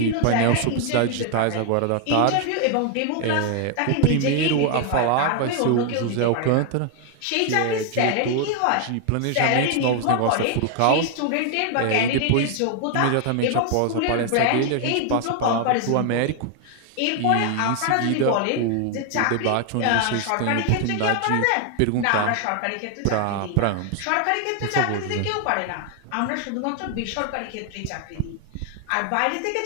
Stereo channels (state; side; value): different; both; correlation 0.00